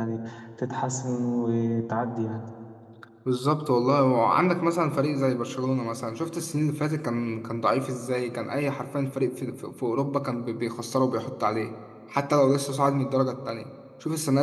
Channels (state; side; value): identical; both; correlation 1.00